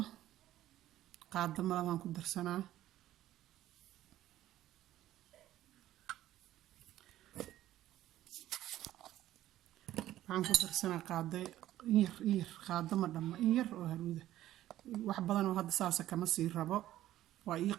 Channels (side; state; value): left; quieter; 13.8 dB